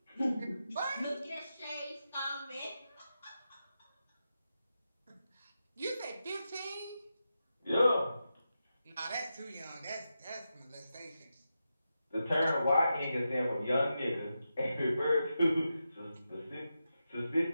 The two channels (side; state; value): both; inverted; correlation -0.89